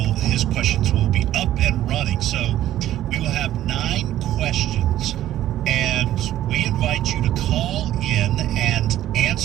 questions will be up and running. So we will have 9 questions, and we invite you to call in and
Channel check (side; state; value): left; quieter; 13.0 dB